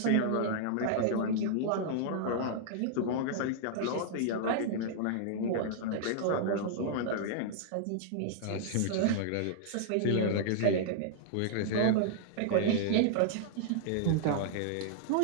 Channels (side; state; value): both; different; correlation -0.01